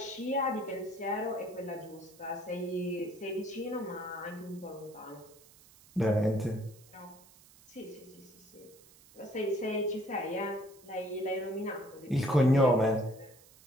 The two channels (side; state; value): right; noise; hiss, 24 dB below the sound